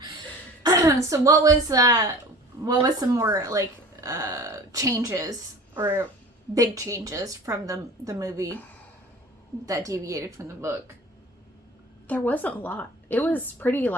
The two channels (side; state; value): both; normal; correlation 0.42